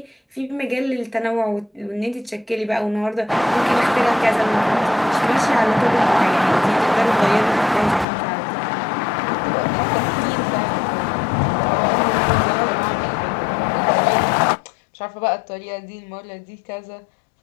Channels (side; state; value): right; drops out; at 8.1 s